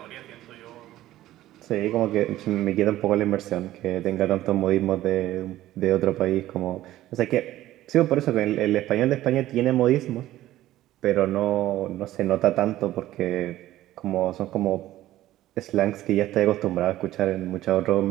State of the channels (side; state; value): left; quieter; 14.7 dB